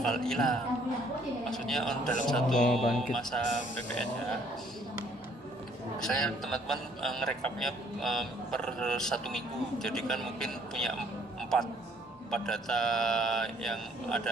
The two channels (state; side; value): normal; both; correlation 0.63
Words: hilang, maksudnya dalam satu masa PPN ya. Saya teman-teman ngerekapnya per 1 minggu, jadi kan mungkin punya 4 data yang